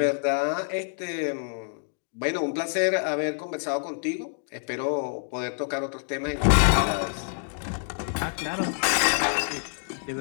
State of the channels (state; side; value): silent; right; digital silence